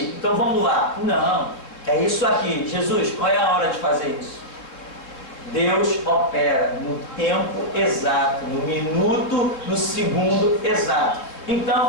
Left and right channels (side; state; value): right; late; 3.6 ms